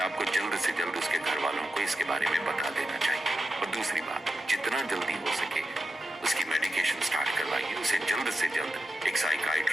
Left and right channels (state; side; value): normal; both; correlation 0.89